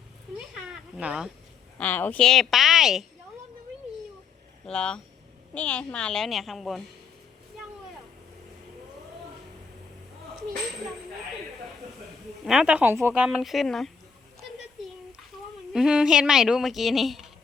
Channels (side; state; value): right; quieter; 5.9 dB